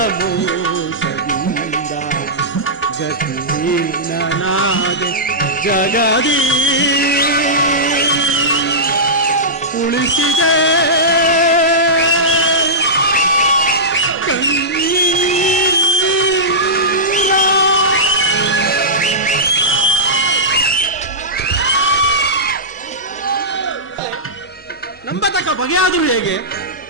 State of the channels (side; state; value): both; normal; correlation -0.14